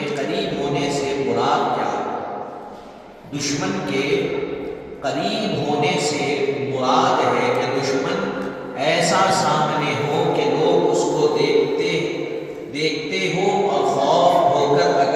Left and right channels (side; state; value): both; identical; correlation 1.00